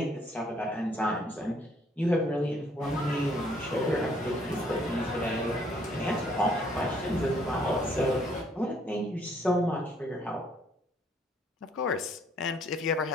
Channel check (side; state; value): both; normal; correlation 0.65